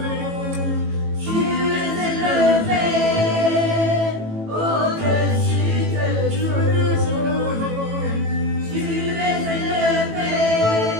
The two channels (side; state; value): left; late; 18 ms